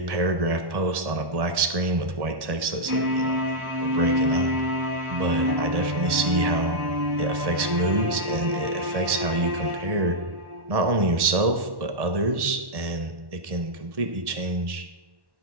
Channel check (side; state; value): left; late; 1.1 ms